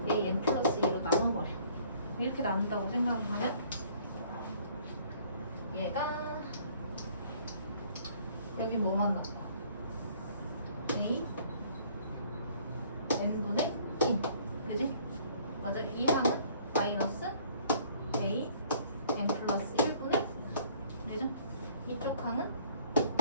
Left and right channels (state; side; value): inverted; both; correlation -0.58